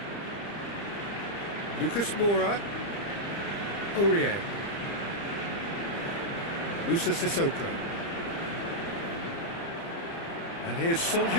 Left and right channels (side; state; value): right; late; 30 ms